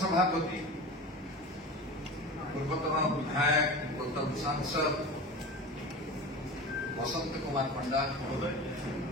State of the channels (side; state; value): both; normal; correlation 0.31